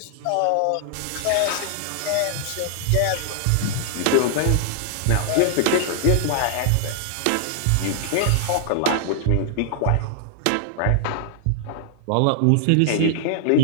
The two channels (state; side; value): different; both; correlation -0.01